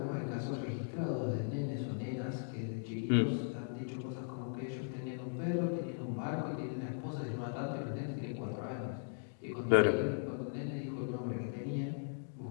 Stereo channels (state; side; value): silent; right; digital silence